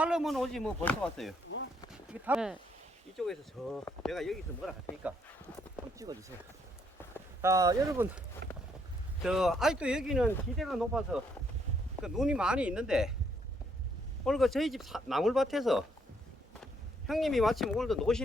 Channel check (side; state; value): both; normal; correlation 0.71